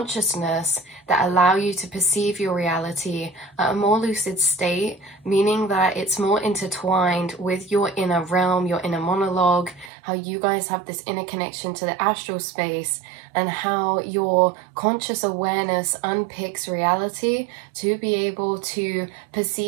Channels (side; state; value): left; drops out; at 9.9 s